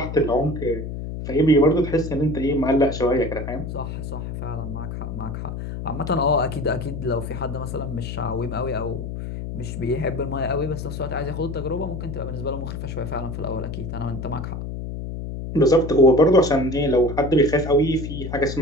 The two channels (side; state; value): left; noise; hum, 6 dB below the sound